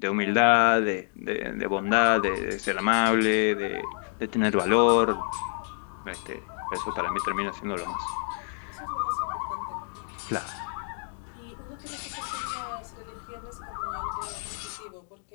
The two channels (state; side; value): silent; right; 58 dB below the other